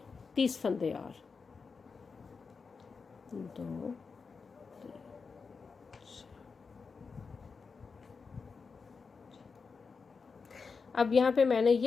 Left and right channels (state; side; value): quieter; right; 5.0 dB